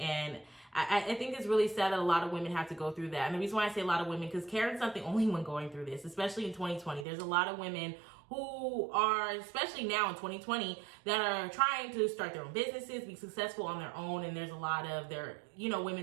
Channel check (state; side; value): drops out; left; at 7.1 s